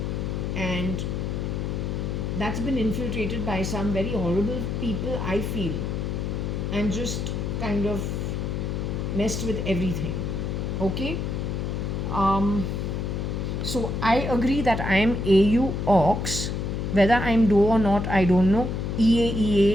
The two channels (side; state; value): left; noise; hum, 2 dB below the sound